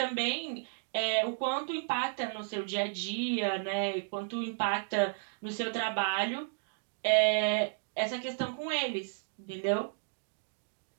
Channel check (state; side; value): silent; left; digital silence